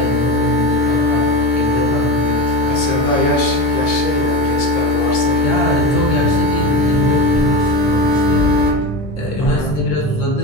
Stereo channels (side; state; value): both; normal; correlation 0.23